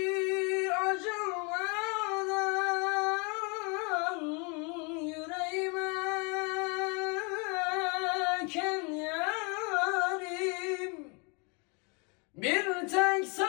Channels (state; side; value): quieter; right; 32.7 dB